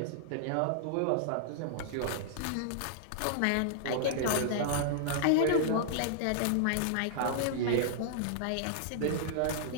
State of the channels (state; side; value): different; both; correlation -0.01